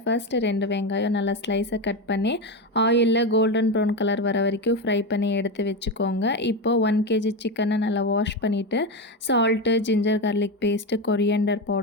ஃபஸ்ட்டு 2 வெங்காயம் நல்லா ஸ்லைஸை கட் பண்ணி ஆயிலில் கோல்டன் ப்ரௌன் கலர் வர வரைக்கும் ஃப்ரை பண்ணி எடுத்து வச்சுக்கோங்க. இப்போது 1 kg சிக்கனை நல்லா வாஷ் பண்ணிவிட்டு salt, ginger garlic paste, coriander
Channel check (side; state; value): both; normal; correlation 0.15